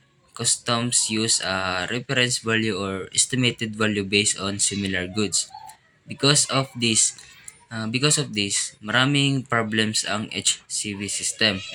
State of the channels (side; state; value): both; identical; correlation 1.00